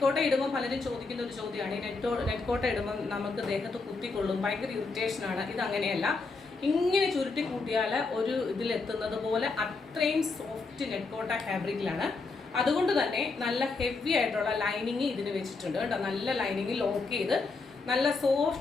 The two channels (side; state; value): right; quieter; 4.0 dB